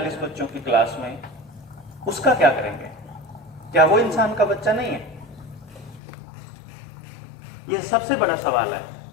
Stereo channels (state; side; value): drops out; right; at 6.0 s